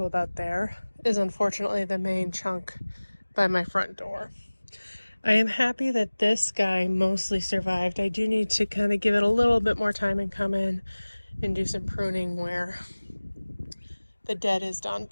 about there, is unfortunately the main chunk by my front door. I am happy that this guy mostly survived. I do need to kind of give it a little bit more time and come in and do some pruning where the dead is done.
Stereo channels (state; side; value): inverted; both; correlation -1.00